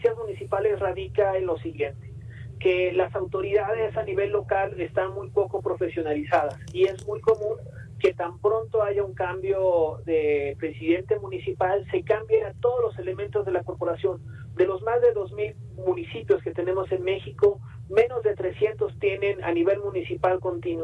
municipales radica en lo siguiente, que las autoridades a nivel local están muy poco profesionalizadas y es muy común que tan pronto haya un cambio de presidente municipal, se cambien a todos los elementos de la corporación. De los más de 2,000 municipios que tenemos en México, menos de 300 tienen a nivel municipal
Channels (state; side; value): identical; both; correlation 1.00